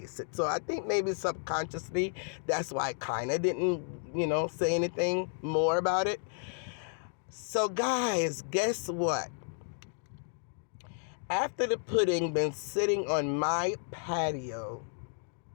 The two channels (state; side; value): silent; right; 56 dB below the other